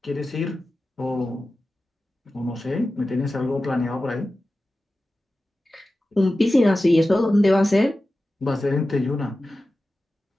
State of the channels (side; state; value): both; normal; correlation 0.94